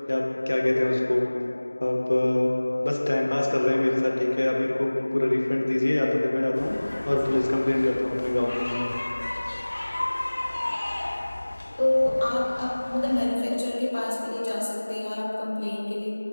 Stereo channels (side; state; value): both; inverted; correlation -1.00